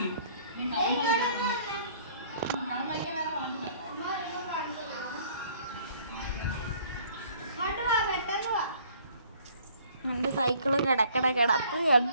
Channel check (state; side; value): inverted; both; correlation -0.57